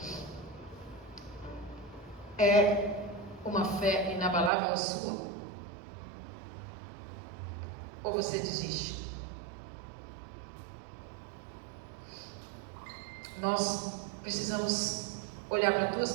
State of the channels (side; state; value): left; drops out; at 4.5 s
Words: É uma fé inabalável a sua? Ou você desiste? Nós precisamos olhar para duas